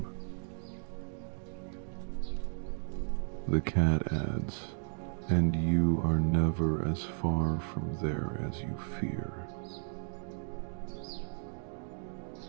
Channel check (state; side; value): silent; left; 55 dB below the other